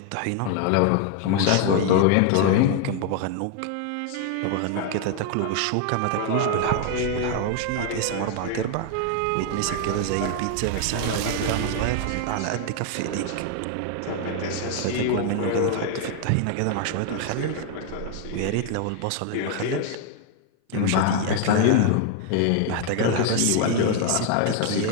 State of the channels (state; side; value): different; both; correlation 0.00